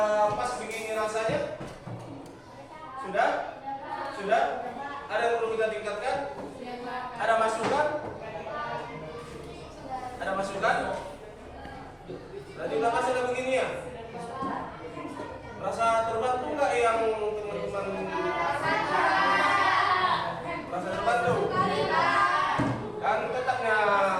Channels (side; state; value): both; identical; correlation 1.00